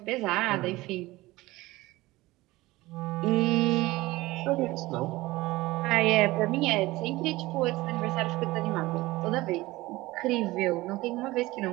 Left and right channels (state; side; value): quieter; left; 19.3 dB